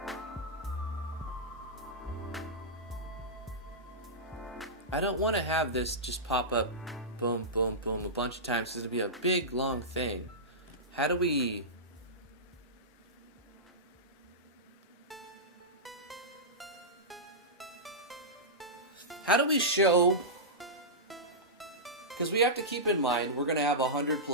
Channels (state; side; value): normal; both; correlation -0.14